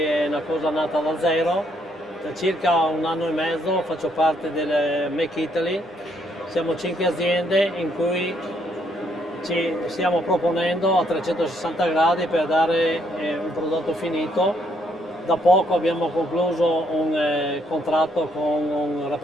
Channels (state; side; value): normal; both; correlation 0.71